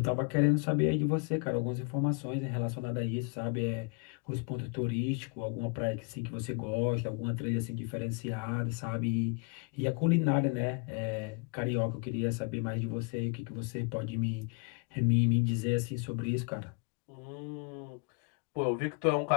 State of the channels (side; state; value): right; quieter; 34.0 dB